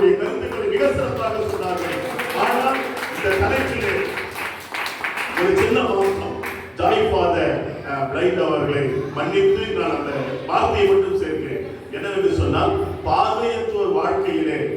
கருத்துக்களை மிக சிறப்பாக சொன்னார்கள். ஆனால் இந்த தலைப்பிலே ஒரு சின்ன மாற்றம், ஜாய் ஃபாதர் பிளைண்ட் அவர்களை மன்னித்து நான் அந்த வார்த்தையை மட்டும் சேர்க்கிறேன். என்னவென்று சொன்னால், பார்வையற்றோர் வாழ்க்கையிலே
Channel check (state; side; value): identical; both; correlation 1.00